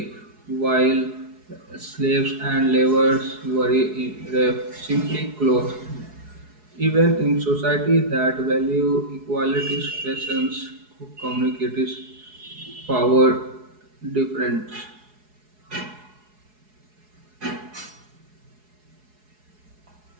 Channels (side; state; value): left; late; 4.7 ms